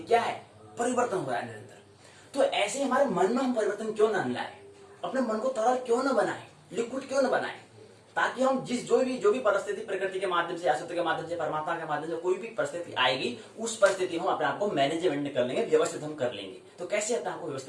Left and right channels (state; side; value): identical; both; correlation 1.00